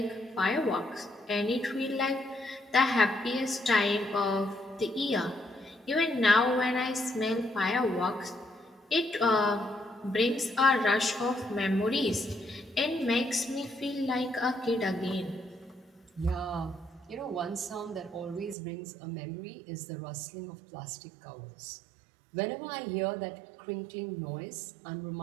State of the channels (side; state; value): left; drops out; at 18.6 s